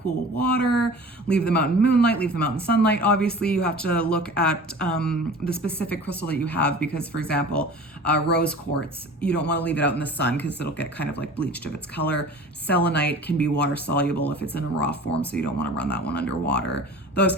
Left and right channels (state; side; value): normal; both; correlation 0.40